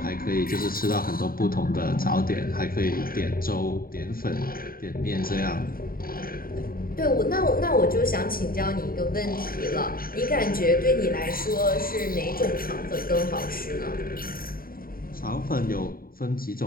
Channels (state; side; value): late; right; 0.42 ms